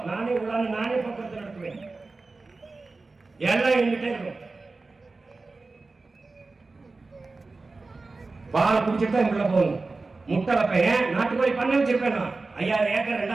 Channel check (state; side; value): quieter; left; 3.7 dB